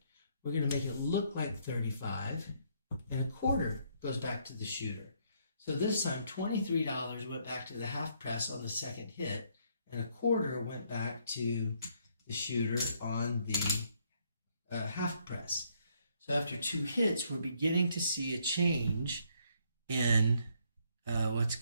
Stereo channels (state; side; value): inverted; both; correlation -0.69